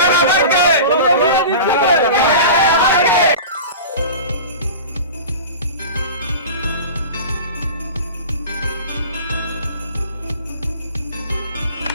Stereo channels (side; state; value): both; inverted; correlation -0.34